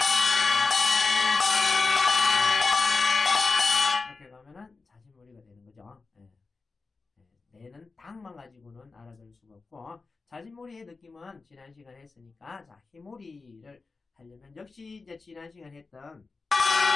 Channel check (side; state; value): right; quieter; 4.1 dB